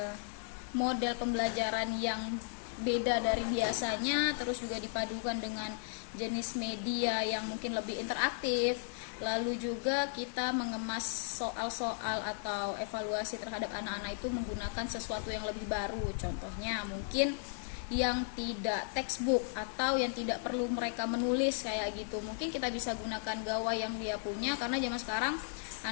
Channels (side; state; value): right; silent; 54 dB below the other